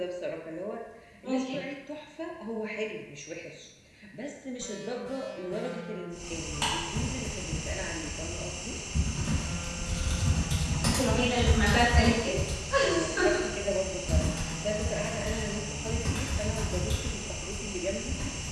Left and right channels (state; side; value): identical; both; correlation 1.00